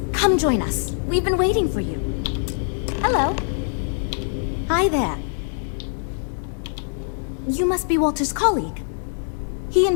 come join us. We've been waiting for you. Hello. Hi there. You must be Walter's colleague. He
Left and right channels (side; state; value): right; silent; 61 dB below the other